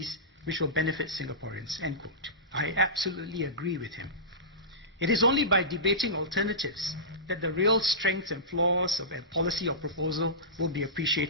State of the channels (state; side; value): normal; both; correlation -0.20